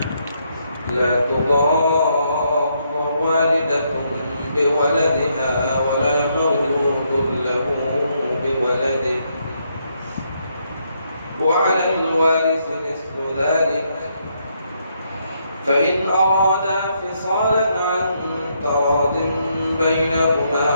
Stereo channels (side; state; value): both; inverted; correlation -0.75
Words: لا تضار والدة بولدها ولا مولود له بولده وعلى الوارث مثل ذلك فإن أرادا فصالا عن تراض بينهما